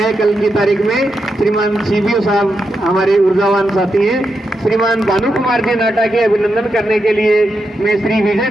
कल की तारीख में। श्रीमान सीबीओ साहब हमारे ऊर्जावान साथी हैं। श्रीमान भानु कुमार जी नाटा के अभिनंदन करने के लिए मैं श्री विजय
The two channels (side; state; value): both; normal; correlation 0.85